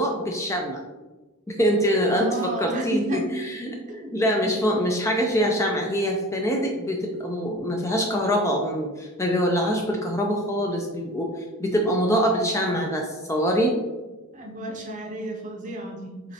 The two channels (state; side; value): normal; both; correlation 0.39